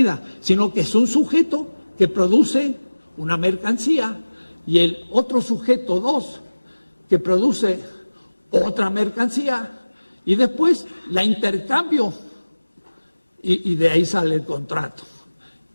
sino que es un sujeto que produce una mercancía y el otro sujeto, dos, que produce otra mercancía y después la intercambio y de ahí sale el contrato.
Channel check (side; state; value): both; inverted; correlation -1.00